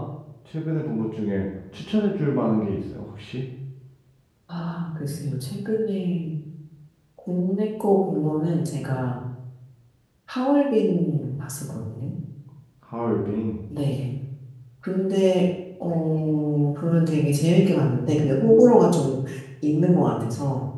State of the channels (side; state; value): both; identical; correlation 1.00